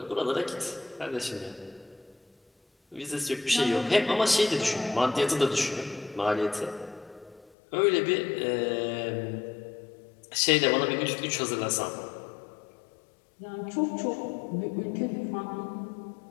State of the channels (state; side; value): drops out; right; at 7.5 s